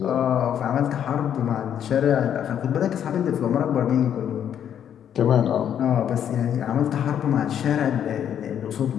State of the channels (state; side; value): quieter; right; 9.4 dB